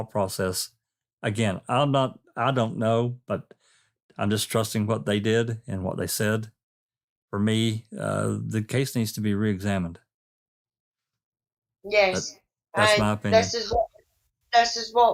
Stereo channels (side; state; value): both; identical; correlation 1.00